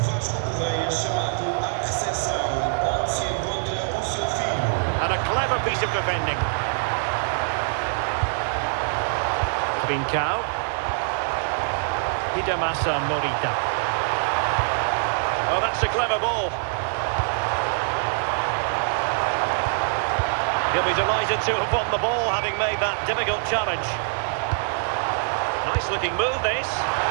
Correia chamado à recepção, onde se encontra o seu filho. And a clever piece of defending. Trincao. Hidemasa Morita. Oh, that's a clever ball. He'll be delighted to have won the ball, having made that difficult challenge. Nice looking move, this.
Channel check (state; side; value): silent; left; digital silence